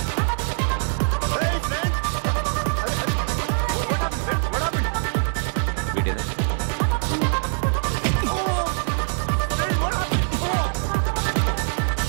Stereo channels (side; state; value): left; silent; 63 dB below the other